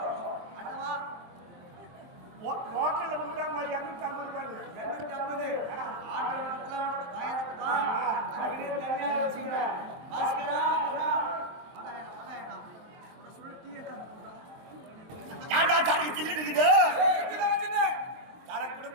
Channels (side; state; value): left; late; 23 ms